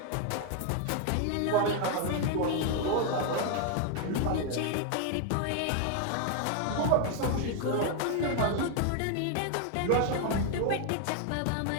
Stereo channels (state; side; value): different; both; correlation 0.00